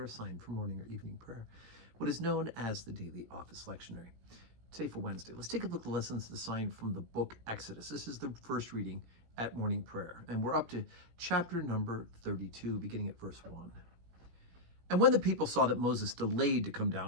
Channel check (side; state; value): left; late; 17 ms